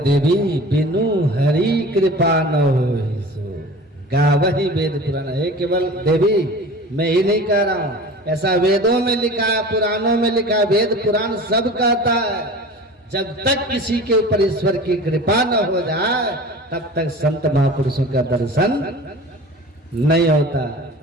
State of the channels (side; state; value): both; normal; correlation 0.39